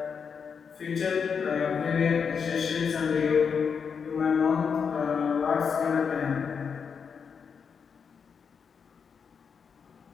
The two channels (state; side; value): quieter; right; 6.3 dB